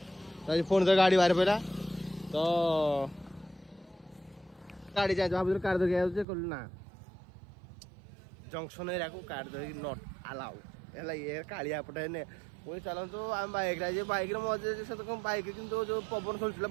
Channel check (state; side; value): drops out; left; at 6.2 s